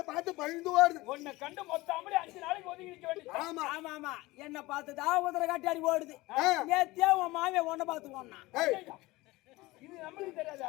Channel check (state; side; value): quieter; right; 20.5 dB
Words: பார்த்து பயந்து ஓடுது. உன்னை கண்டு மொத்தமாலே 5 நாளைக்கு ஒதுங்கி நிக்க வேண்டியது. ஆமா ஆமா ஆமா என்ன பார்த்துதான் உதர காட்டாடி ஓடுது நேத்தியா உன் மாமியா உன்னை பார்த்து ஓடனா ஏய் இது நம்மளுக்கு